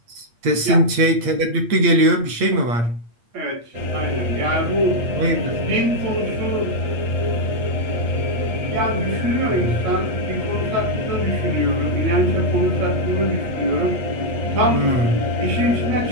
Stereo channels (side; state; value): left; late; 8.7 ms